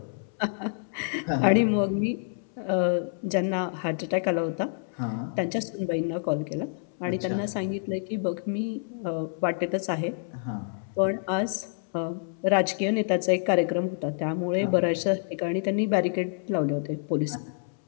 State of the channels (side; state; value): right; silent; 60 dB below the other